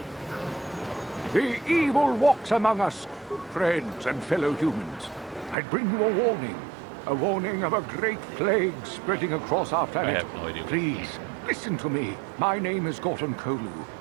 The evil walks among us, friends and fellow humans. I bring you a warning of a great plague spreading across our planet. I have no idea. Please, listen to me. My name is Gorton Kolu.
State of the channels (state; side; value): drops out; left; at 5.6 s